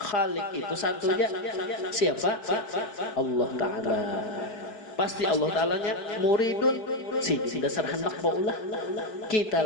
itu satunya siapa? Allah Ta'ala. Pasti Allah Ta'alanya muridun si dasar hendak baulah kita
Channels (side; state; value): right; late; 4.6 ms